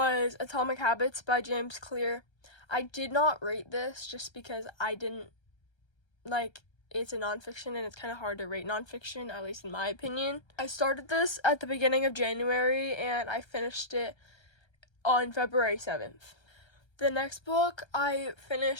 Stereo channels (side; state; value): right; late; 1.3 ms